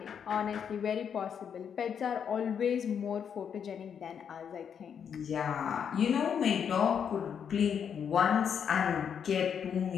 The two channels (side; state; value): right; quieter; 7.7 dB